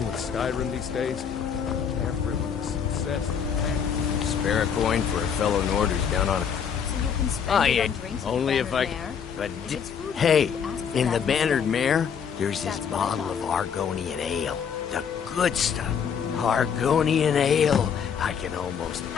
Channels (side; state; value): right; quieter; 7.3 dB